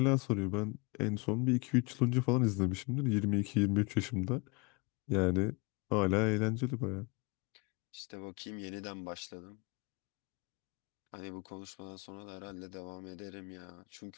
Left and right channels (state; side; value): quieter; right; 29.5 dB